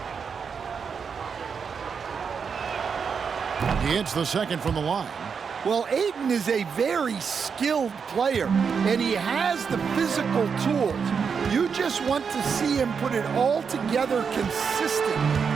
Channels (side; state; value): left; quieter; 6.2 dB